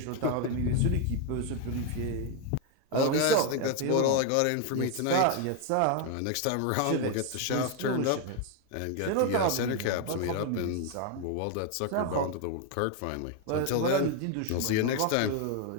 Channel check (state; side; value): different; both; correlation 0.01